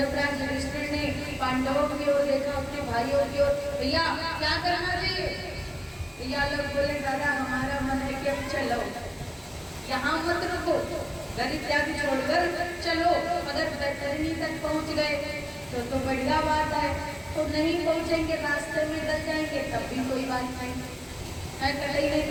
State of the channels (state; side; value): identical; both; correlation 1.00